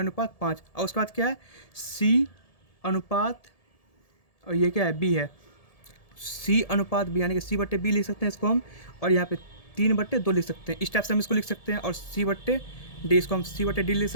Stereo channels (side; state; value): right; late; 1.7 ms